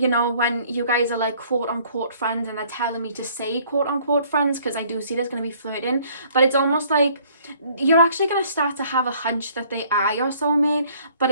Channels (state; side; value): inverted; both; correlation -0.59